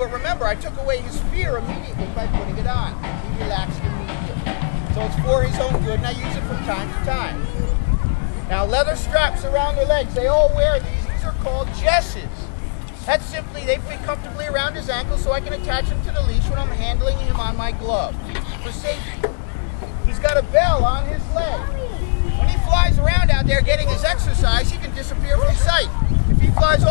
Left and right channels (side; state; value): right; silent; digital silence